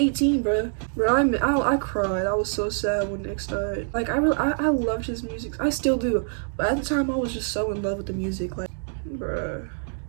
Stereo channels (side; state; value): left; silent; digital silence